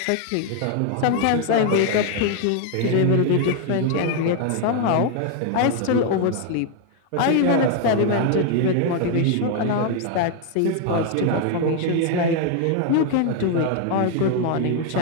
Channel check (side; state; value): both; different; correlation 0.00